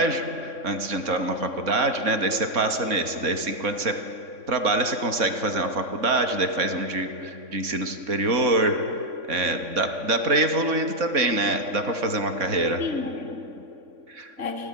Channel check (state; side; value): late; left; 3.6 ms